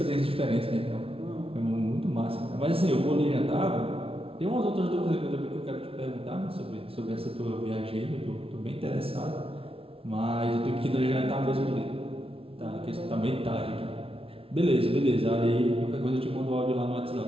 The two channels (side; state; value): left; late; 0.27 ms